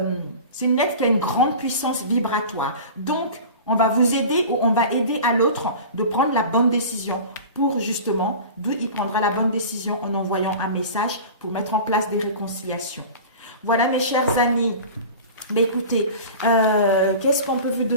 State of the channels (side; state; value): both; inverted; correlation -0.36